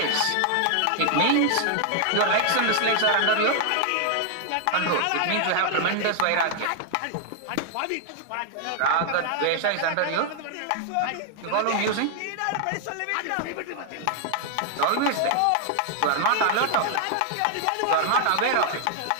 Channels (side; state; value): both; different; correlation 0.00